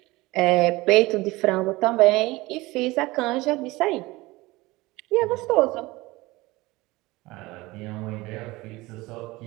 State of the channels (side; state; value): left; quieter; 20.8 dB